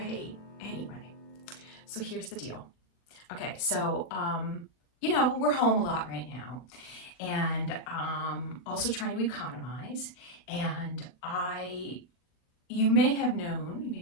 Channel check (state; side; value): late; right; 40 ms